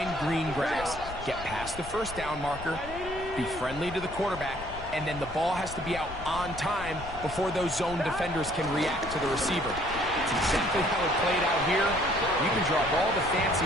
green grass, get past the 1st down marker, be friendly to the quarterback, and then the ball has to be out on time before those zone defenders can react to the receiver. It's exactly how it played out here. You can draw up all the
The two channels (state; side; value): noise; left; rumble, 12 dB below the sound